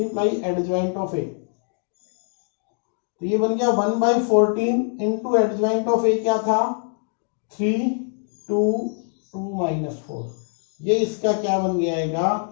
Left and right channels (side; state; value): right; silent; 58 dB below the other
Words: एडजॉइंट ऑफ ए, तो ये बन गया 1/14 इंटू एडजॉइंट ऑफ ए क्या था, 3 2 2 -4, ये इसका क्या बन जाएगा,